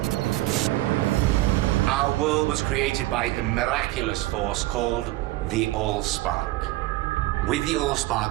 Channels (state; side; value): quieter; left; 17.8 dB